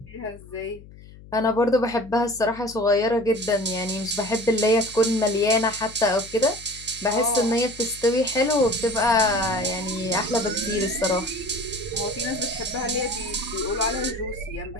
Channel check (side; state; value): left; noise; hum, 19 dB below the sound